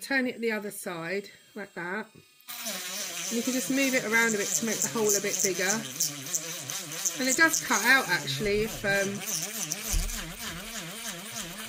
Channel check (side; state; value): both; identical; correlation 1.00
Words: it the other side like that. And you can just move it around a bit to make the hole a bit bigger. And it does cut out actually if